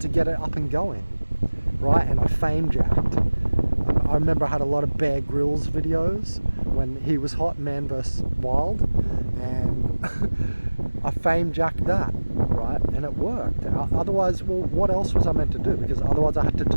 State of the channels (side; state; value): both; inverted; correlation -1.00